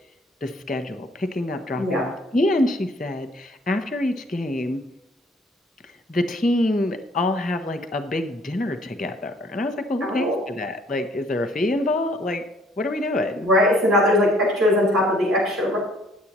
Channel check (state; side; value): normal; both; correlation 0.60